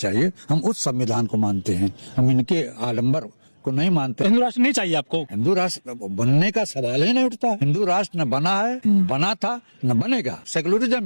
हम उस संविधान को मानते हैं, हम इनके आडंबर को नहीं मानते। हिंदू राष्ट्र नहीं चाहिए आपको? हिंदू राष्ट्र बनने का सवाल ही नहीं उठता। हिंदू राष्ट्र न बना है, बना था, न बनेगा।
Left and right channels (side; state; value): both; inverted; correlation -1.00